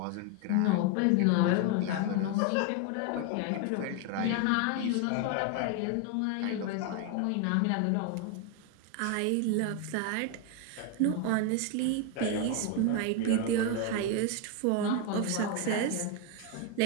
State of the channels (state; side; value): different; both; correlation 0.01